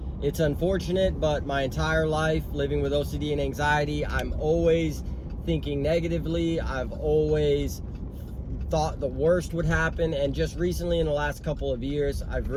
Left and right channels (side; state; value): both; identical; correlation 1.00